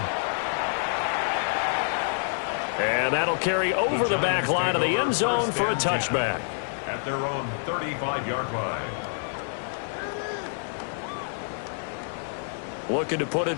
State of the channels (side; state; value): right; silent; digital silence